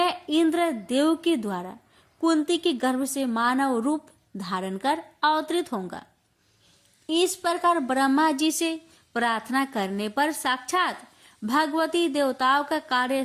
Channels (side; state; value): both; identical; correlation 1.00